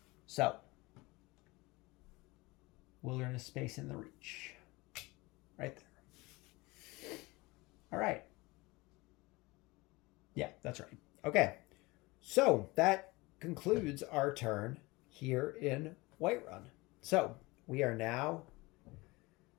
So, wilderness space in the Reach. Right there. All right. Yeah, that's right. Okay. So, that concludes our turn here in Whiterun. So, we are now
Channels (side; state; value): right; quieter; 23.0 dB